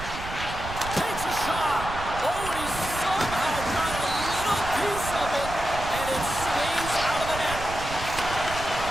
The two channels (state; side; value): noise; right; rumble, 9 dB below the sound